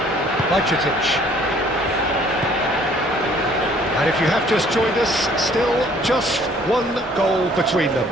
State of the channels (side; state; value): both; normal; correlation 0.58